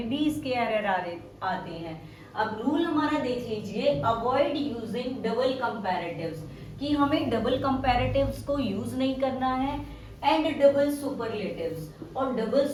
भी इसके एरर आते हैं. अब रूल हमारा देख लीजिए, अवॉइड यूजिंग डबल कंपैरेटिव्स, कि हमें डबल कंपैरेटिव्स को यूज नहीं करना है, एंड डबल सुपरलेटिव्स, और डबल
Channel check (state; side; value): identical; both; correlation 1.00